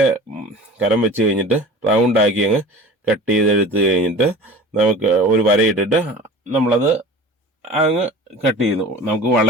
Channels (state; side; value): normal; both; correlation 0.40